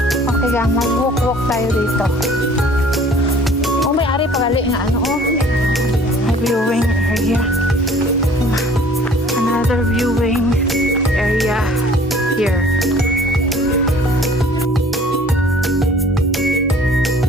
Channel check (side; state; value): both; normal; correlation 0.51